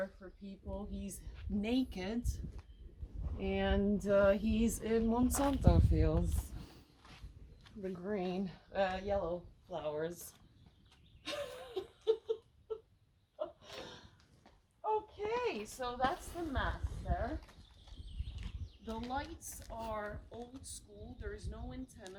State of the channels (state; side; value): identical; both; correlation 1.00